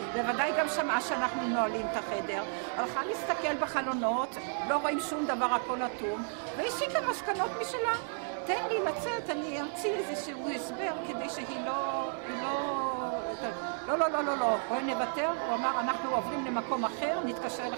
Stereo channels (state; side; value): silent; left; 56 dB below the other